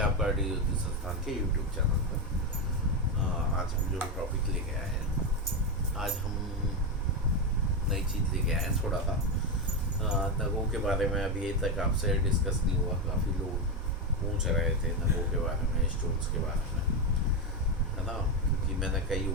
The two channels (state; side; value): normal; both; correlation 0.10